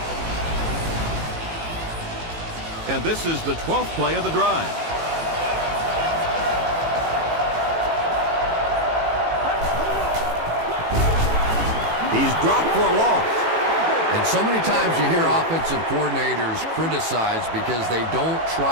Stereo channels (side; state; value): left; late; 18 ms